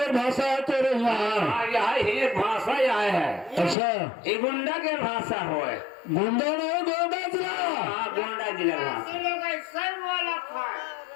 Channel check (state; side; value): drops out; right; at 3.8 s